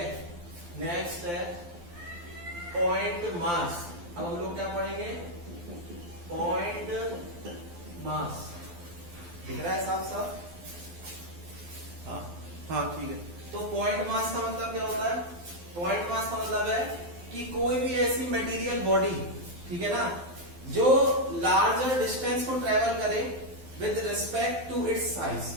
नेक्स्ट है पॉइंट मास। अब हम लोग क्या पढ़ेंगे, पॉइंट मास। दिख रहा है साफ साफ? हाँ ठीक है। तो पॉइंट मास का मतलब क्या होता है, पॉइंट मास का मतलब है कि कोई भी ऐसी मटेरियल बॉडी, ठीक है ना, जो लार्जर डिस्टेंस को ट्रेवल करे with respect to its size,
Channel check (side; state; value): left; late; 12 ms